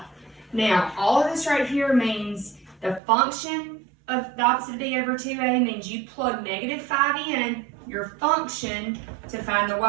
Now, all of this right here means the function of the opposite of b over 2a means you plug -5 in your function to find the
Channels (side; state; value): left; drops out; at 3.0 s